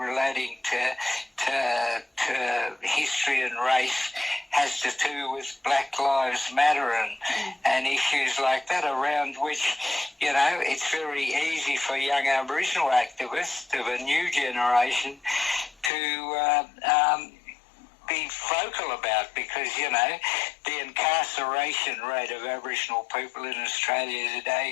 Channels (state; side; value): drops out; right; at 15.9 s